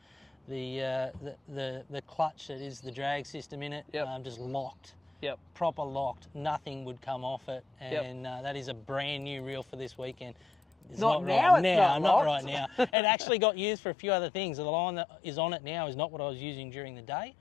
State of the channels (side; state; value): right; drops out; at 12.9 s